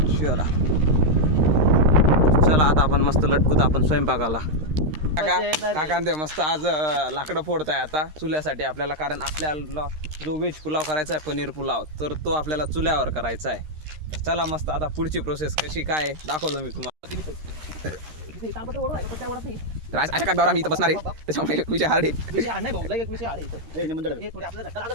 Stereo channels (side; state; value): left; late; 13 ms